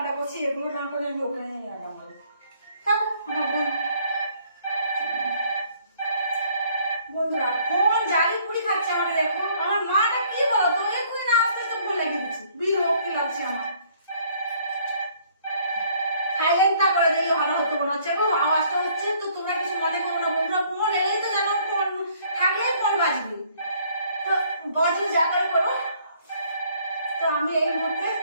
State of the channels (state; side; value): inverted; both; correlation -0.62